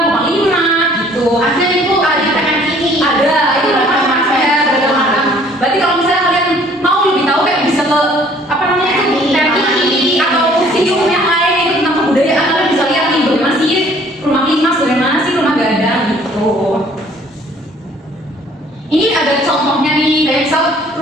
rumah limak, gitu. Ada itu ada ini. Ada itu rumah berarti kalau misalnya kalian mau lebih tahu kayak bisa ke TV atau museum yang lain itu tentang kebudayaan, kalian bisa lihat nih bagaimana sih rumah limas, bagaimana sih rumah gadang gitu. Ini ada contohnya nih, kayak misal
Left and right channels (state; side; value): normal; both; correlation 0.57